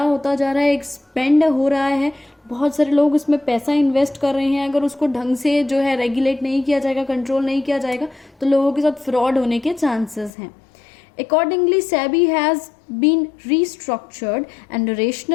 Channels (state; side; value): drops out; right; at 10.3 s